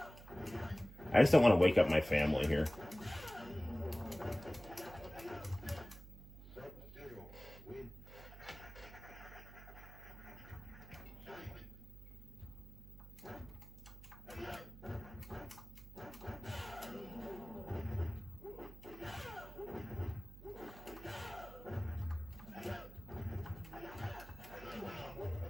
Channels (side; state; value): right; noise; hum, 16 dB below the sound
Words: I just don't want to wake up my family here.